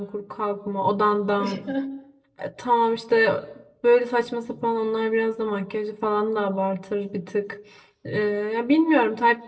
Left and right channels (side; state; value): both; identical; correlation 1.00